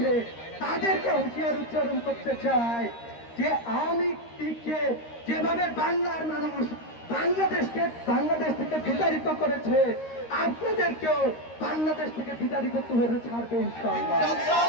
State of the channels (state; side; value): late; right; 13 ms